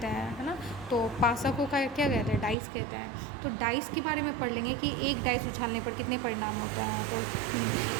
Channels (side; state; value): left; drops out; at 2.6 s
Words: हैं, है ना। तो पासा को क्या कहते हैं, डाइस कहते हैं। तो डाइस के बारे में पढ़ लेंगे कि एक डाइस उछालने पर कितने परिणाम होते हैं। तो